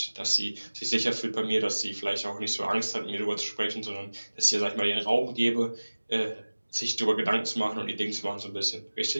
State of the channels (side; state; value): both; inverted; correlation -1.00